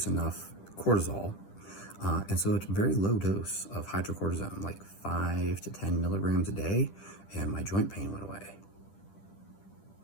enough cortisol. And so it's a very low dose of hydrocortisone, like 5 to 10 milligrams a day, and my joint pain went away.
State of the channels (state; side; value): late; right; 10 ms